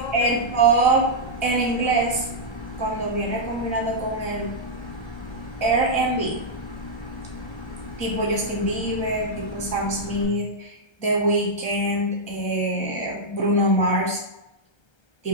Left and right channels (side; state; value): right; late; 1.3 ms